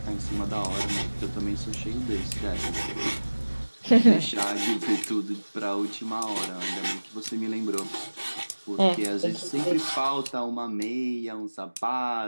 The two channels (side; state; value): both; inverted; correlation -1.00